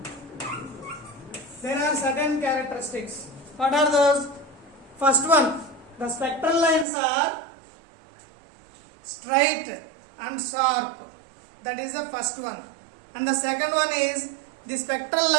There are certain characteristics. What are those? First one, the spectral lines are straight and sharp. That is the first one. And the second one is the spectral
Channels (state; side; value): drops out; left; at 6.9 s